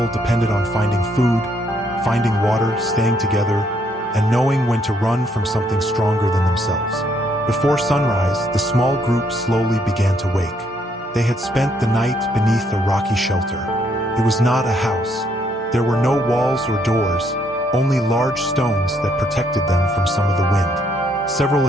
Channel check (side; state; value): both; normal; correlation 0.71